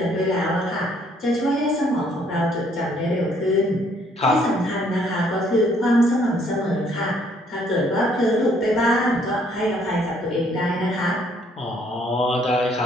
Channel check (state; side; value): normal; both; correlation 0.65